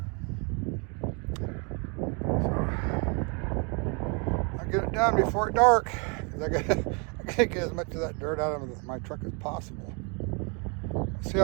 I'll get it done before it's dark. I gotta get as much of that dirt out of my truck as possible. See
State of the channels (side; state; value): left; quieter; 34.2 dB